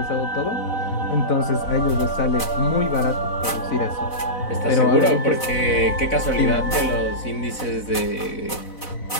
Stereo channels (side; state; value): right; late; 4.0 ms